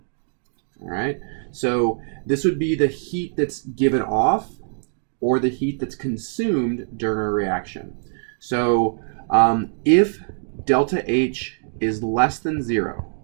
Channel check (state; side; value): silent; left; digital silence